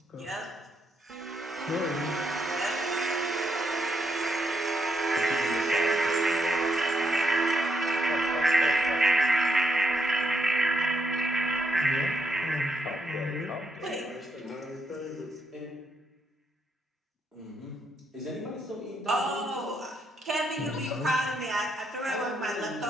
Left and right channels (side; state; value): both; normal; correlation 0.78